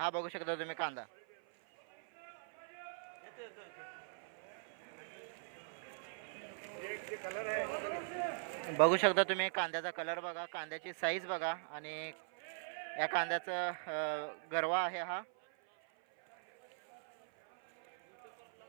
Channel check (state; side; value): silent; left; 50 dB below the other